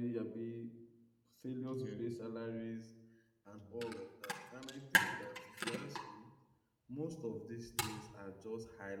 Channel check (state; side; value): identical; both; correlation 1.00